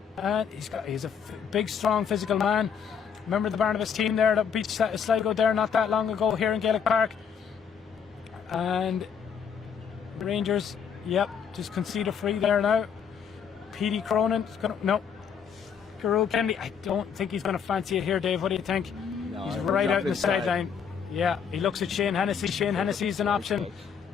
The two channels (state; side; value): quieter; right; 7.1 dB